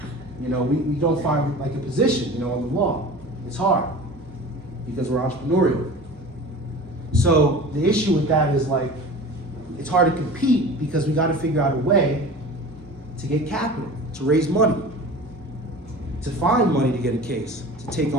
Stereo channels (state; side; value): normal; both; correlation 0.38